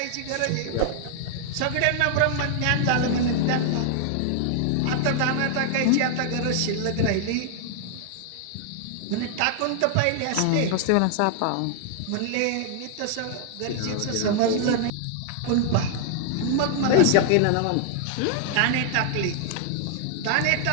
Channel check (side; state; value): both; different; correlation -0.01